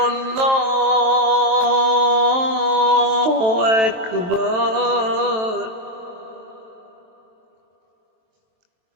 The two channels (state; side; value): late; left; 23 ms